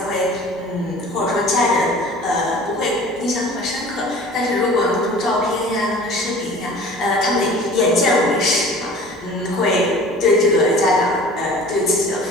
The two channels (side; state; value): both; normal; correlation 0.44